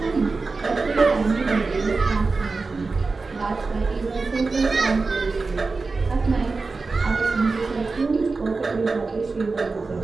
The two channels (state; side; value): quieter; left; 4.0 dB